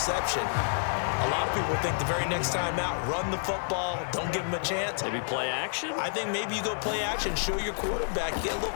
a lot of people think the very next time out, run the football, don't give them a chance. Maybe play action? I think maybe you go play action, show your quarterback, get a little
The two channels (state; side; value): silent; right; 58 dB below the other